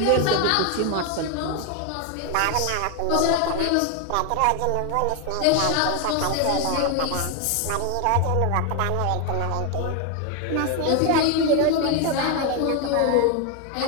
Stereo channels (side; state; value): both; different; correlation 0.01